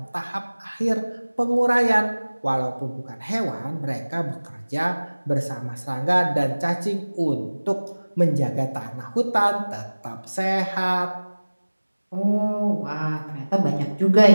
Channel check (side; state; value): both; inverted; correlation -1.00